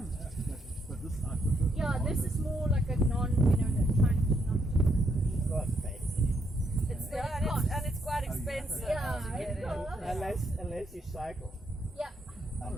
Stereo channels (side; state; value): both; normal; correlation 0.75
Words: But this I prefer. Yeah, this is more like a non, you know, trying to not. Not fancy. It's and it's quite expensive. Yeah, to get it's in. cool. Unless you cycle. Yeah.